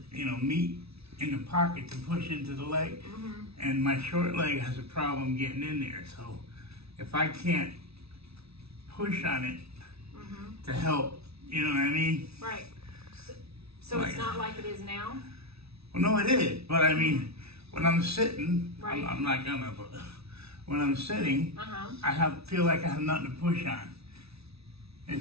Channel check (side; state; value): left; late; 0.78 ms